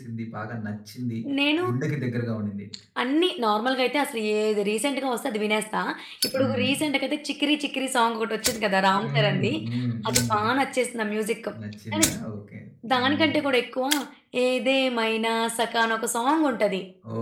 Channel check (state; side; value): identical; both; correlation 1.00